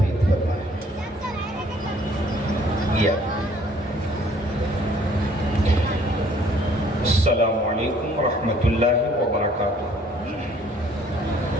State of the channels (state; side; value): normal; both; correlation 0.59